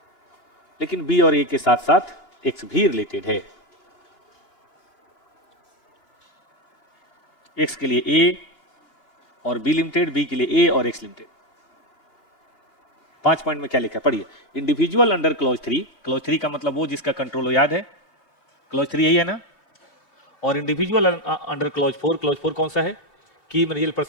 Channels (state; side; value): late; right; 2.8 ms